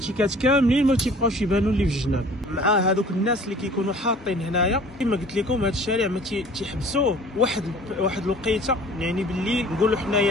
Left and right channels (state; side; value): normal; both; correlation 0.48